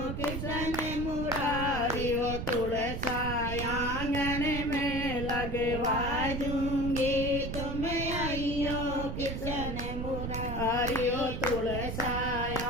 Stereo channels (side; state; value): right; noise; rumble, 4 dB below the sound